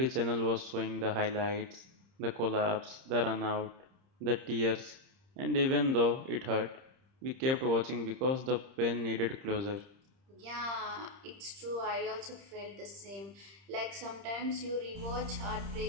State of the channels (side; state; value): left; late; 30 ms